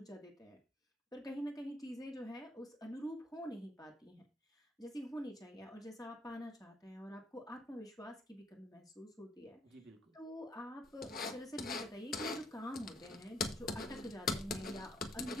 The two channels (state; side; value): normal; both; correlation 0.71